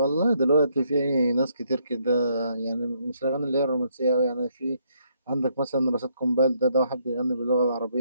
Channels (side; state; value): both; inverted; correlation -0.72